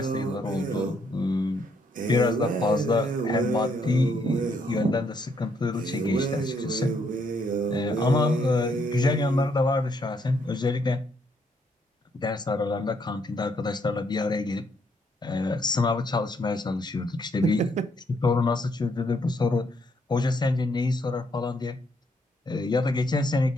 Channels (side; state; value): both; normal; correlation 0.72